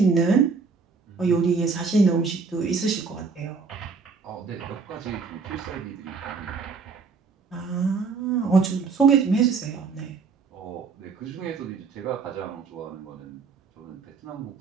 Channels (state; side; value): quieter; left; 4.9 dB